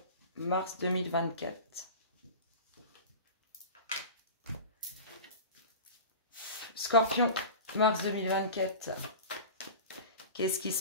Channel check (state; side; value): inverted; both; correlation -0.32